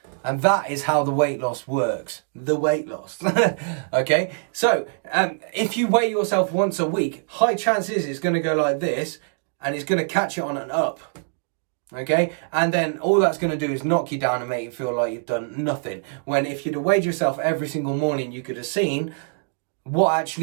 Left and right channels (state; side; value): silent; left; digital silence